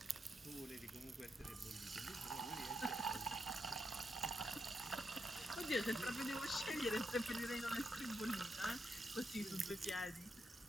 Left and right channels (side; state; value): both; normal; correlation 0.83